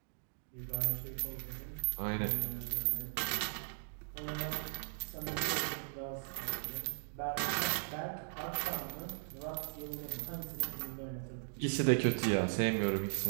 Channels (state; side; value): silent; left; digital silence